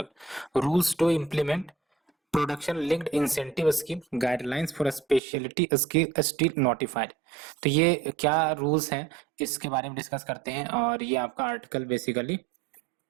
rules to implement production linked incentive scheme guidelines for speciality steel notified. तो ये क्या रूल्स हैं इसके बारे में डिस्कस करते हैं, और ये आपका article basically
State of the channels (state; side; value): drops out; left; at 5.2 s